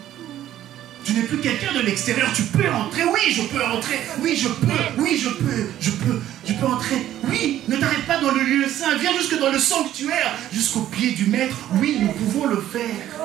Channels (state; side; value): quieter; left; 12.4 dB